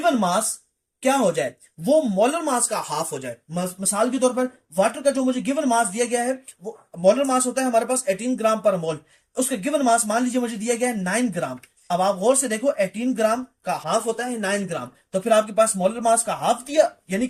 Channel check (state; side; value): identical; both; correlation 1.00